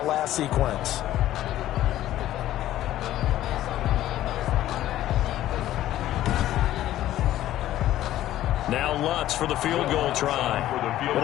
last sequence. Now Lutz for the field goal try.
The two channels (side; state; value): right; quieter; 13.6 dB